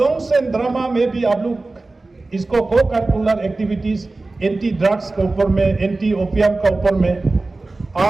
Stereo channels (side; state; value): left; quieter; 3.3 dB